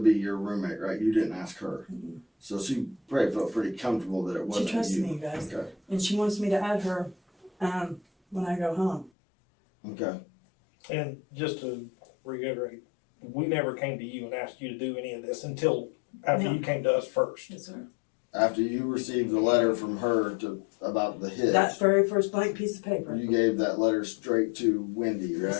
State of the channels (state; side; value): drops out; right; at 9.1 s